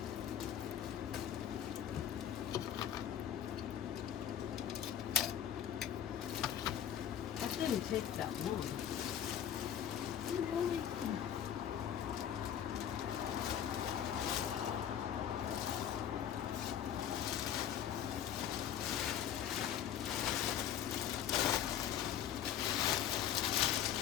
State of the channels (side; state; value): right; quieter; 9.9 dB